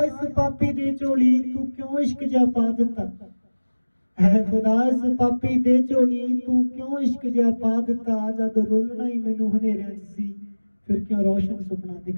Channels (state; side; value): inverted; both; correlation -1.00